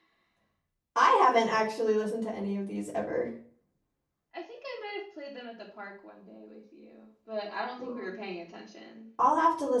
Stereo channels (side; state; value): both; identical; correlation 1.00